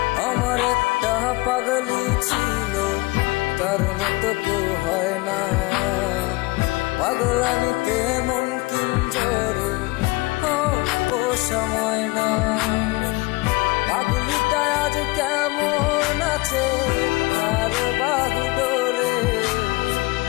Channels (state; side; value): quieter; right; 23.3 dB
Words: আমার একটা পাগলি ছিল, তার মতো কেউ হয় না। পাগলামিতে মন কিঞ্জর পোষা ময়না। পাগলিটা আজ কেমন আছে আর বাহু ডোরে,